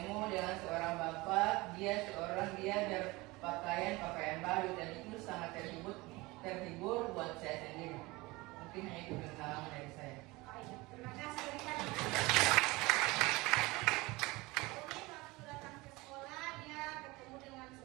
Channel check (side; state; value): left; quieter; 22.3 dB